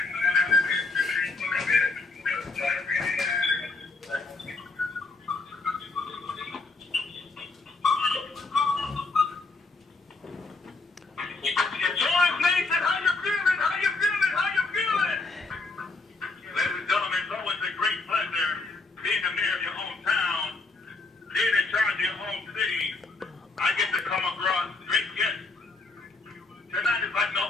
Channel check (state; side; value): quieter; right; 3.6 dB